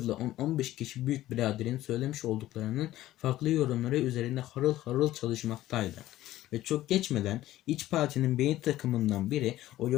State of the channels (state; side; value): quieter; right; 14.8 dB